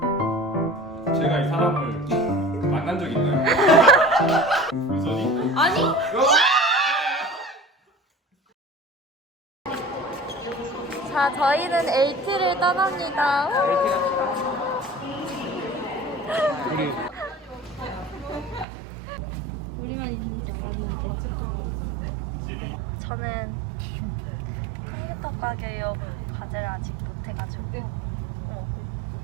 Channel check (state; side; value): drops out; left; at 18.7 s